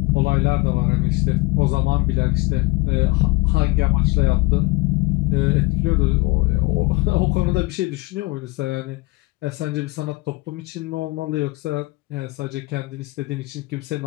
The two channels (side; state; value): right; quieter; 22.8 dB